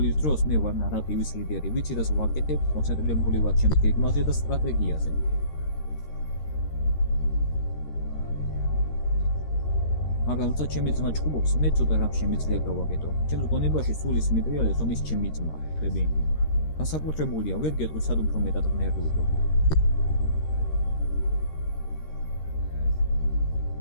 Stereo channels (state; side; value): late; right; 13 ms